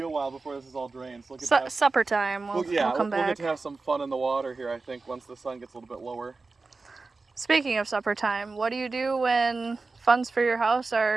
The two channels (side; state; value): left; quieter; 3.9 dB